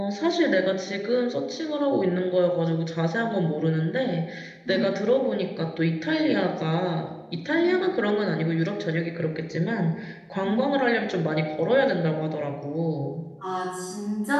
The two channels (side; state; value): both; identical; correlation 1.00